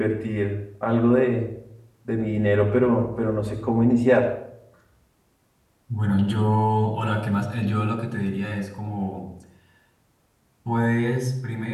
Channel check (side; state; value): both; identical; correlation 1.00